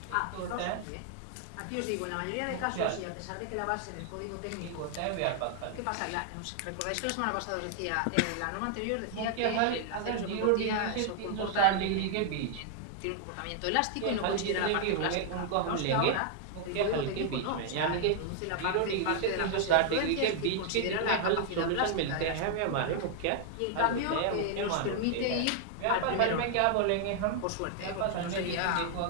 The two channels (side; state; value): both; different; correlation 0.00